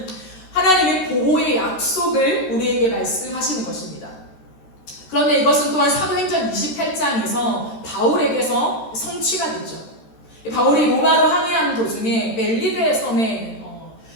하나님의 보호의 약속을 우리에게 말씀하시는 것입니다. 그런데 이것은 또한 사도행전 28장에서 바울에게서 성취가 되죠. 바울이 로마로 항해하는 도중에 멜리데 섬에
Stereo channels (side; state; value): right; late; 13 ms